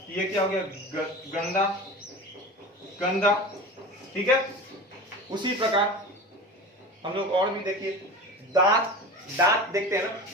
ये क्या हो गया गंदा गंदा। ठीक है, उसी प्रकार हम लोग और भी देखिए, दांत दांत देखते हैं ना,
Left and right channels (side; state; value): both; normal; correlation 0.31